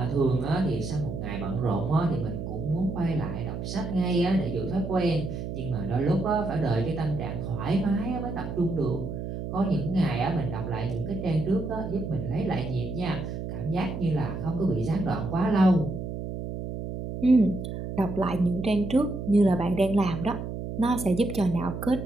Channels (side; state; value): right; noise; hum, 6 dB below the sound